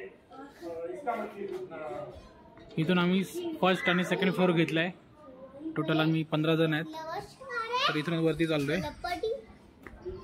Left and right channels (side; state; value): both; identical; correlation 1.00